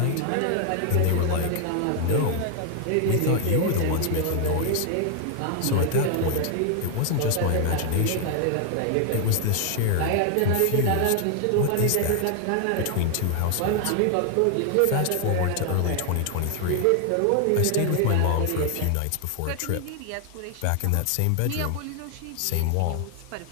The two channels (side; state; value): both; different; correlation 0.00